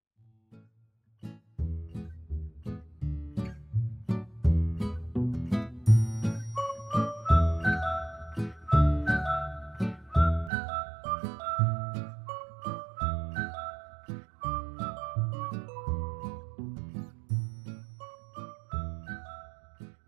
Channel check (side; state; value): left; drops out; at 10.5 s